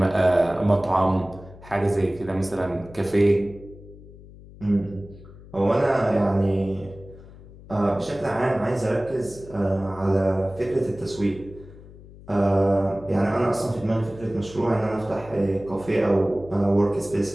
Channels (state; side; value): noise; left; hum, 19 dB below the sound